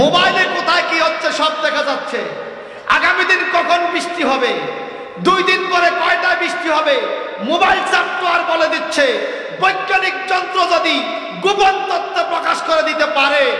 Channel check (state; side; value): identical; both; correlation 1.00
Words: মোবাইলে কোথায় কি হচ্ছে সব দেখা যাচ্ছে। আগামী দিন কখন বৃষ্টি হবে, 2 দিন পরে কয়টা বৃষ্টি হবে, মোবাইল সফটওয়্যার বলে দিচ্ছে। বৈজ্ঞানিক যন্ত্র যদি গোপন তথ্য প্রকাশ করে দিতে পারে